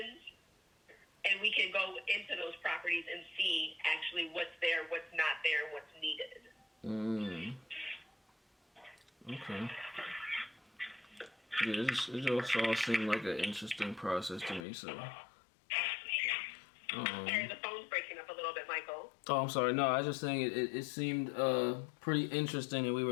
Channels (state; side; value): drops out; right; at 14.7 s